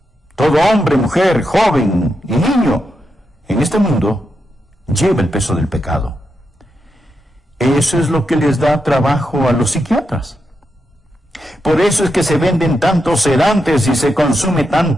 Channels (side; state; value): both; normal; correlation 0.85